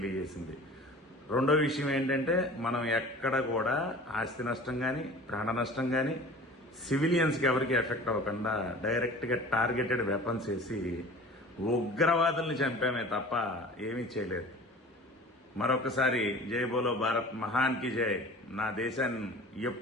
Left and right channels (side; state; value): both; normal; correlation 0.41